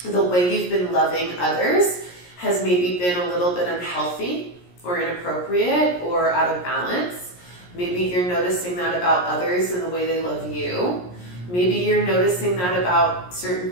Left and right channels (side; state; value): right; late; 17 ms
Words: the way you've been loving others has maybe been a little bit unhealthy or inappropriate or out of balance. Maybe you're noticing that about others and the way they love you. Maybe you're noticing that about certain